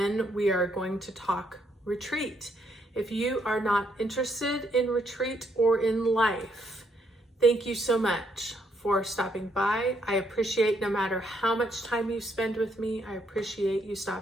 we are going to talk retreat. If you are not interested in retreat or in life, thank you so much for stopping by. I appreciate no matter how much time you spend with me, I appreciate you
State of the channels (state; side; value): normal; both; correlation 0.73